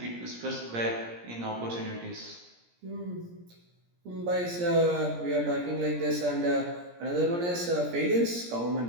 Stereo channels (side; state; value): left; late; 17 ms